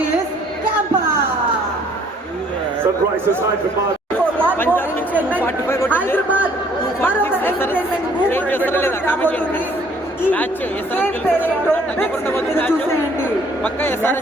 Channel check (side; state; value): both; normal; correlation 0.60